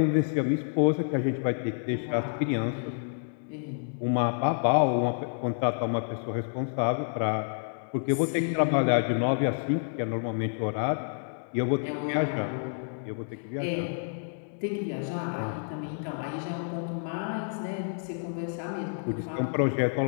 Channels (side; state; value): right; silent; 59 dB below the other